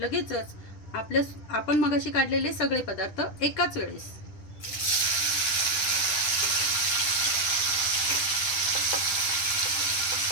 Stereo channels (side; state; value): right; late; 10 ms